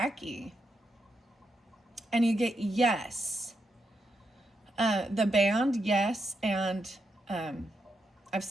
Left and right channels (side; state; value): both; normal; correlation 0.83